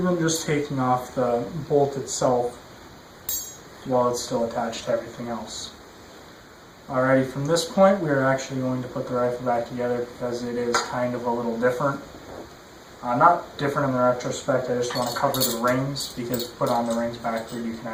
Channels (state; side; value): identical; both; correlation 1.00